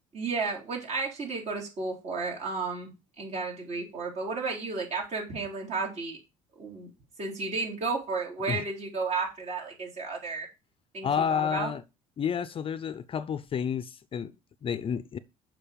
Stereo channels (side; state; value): both; normal; correlation 0.27